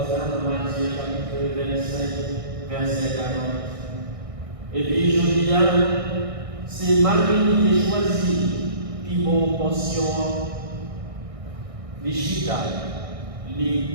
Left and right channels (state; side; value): late; left; 1.6 ms